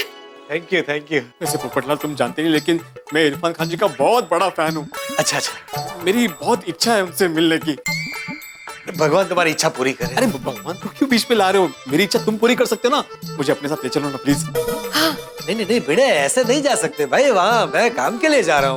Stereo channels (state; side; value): identical; both; correlation 1.00